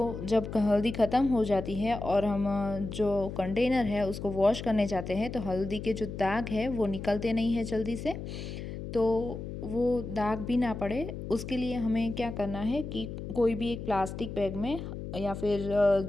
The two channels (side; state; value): left; noise; hum, 8 dB below the sound